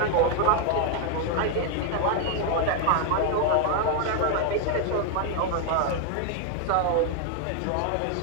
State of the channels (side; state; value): both; different; correlation 0.00